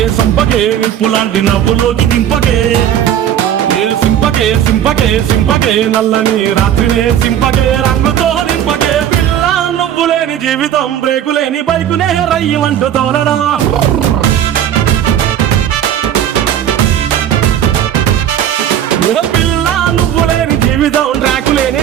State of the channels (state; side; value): quieter; left; 10.2 dB